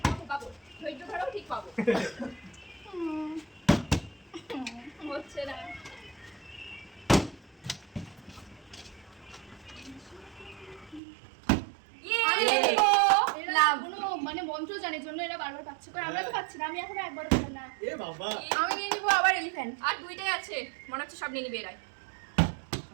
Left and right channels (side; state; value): left; drops out; at 11.0 s